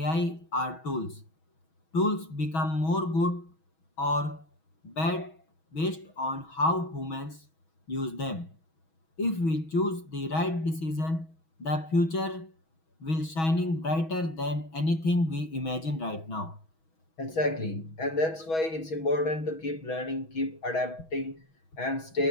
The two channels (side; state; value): right; late; 6.2 ms